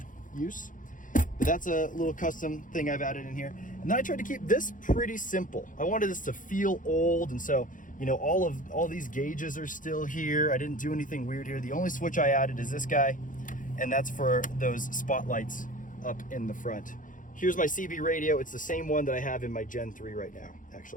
use. But that's a little custom thing I've added in here. And then I tried to keep this pretty simple. I wanted this to feel old, and so, you know, all these gauges are still here. I didn't do anything weird here. The only switch I added is this guy, and that's for those spotlights up in the front. Here's my CB radio. It's the same one that I have in my Gen 3 right now,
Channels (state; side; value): late; right; 0.38 ms